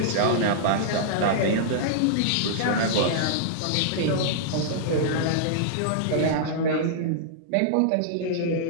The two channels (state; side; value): different; both; correlation -0.02